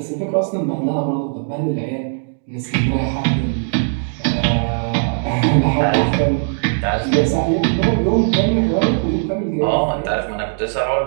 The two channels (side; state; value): left; silent; 67 dB below the other